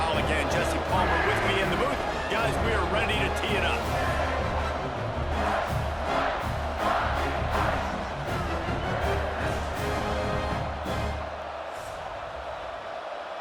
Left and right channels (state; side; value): identical; both; correlation 1.00